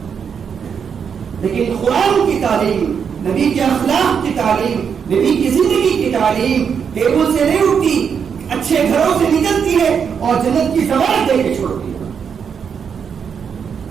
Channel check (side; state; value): left; quieter; 6.9 dB